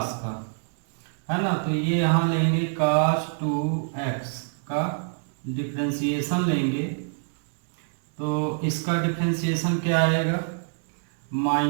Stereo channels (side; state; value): left; silent; 61 dB below the other